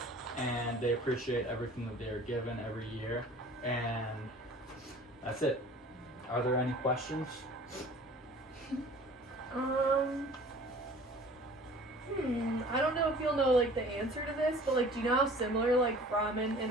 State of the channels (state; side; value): normal; both; correlation 0.47